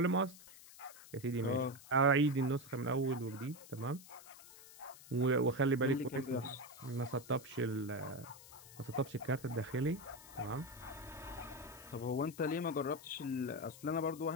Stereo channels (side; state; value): left; noise; hiss, 18 dB below the sound